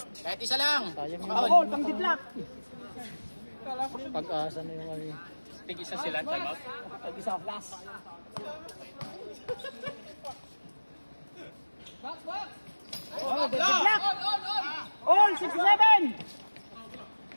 Kahit isa lang. Sayang Ball, pang didlock. pag-asa na yung ano. Tig-isa sila, time out. Tag-isa last. Oh, didlock. All 67.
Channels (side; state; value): both; inverted; correlation -1.00